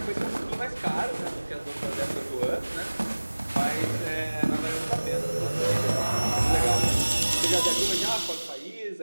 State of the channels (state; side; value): inverted; both; correlation -1.00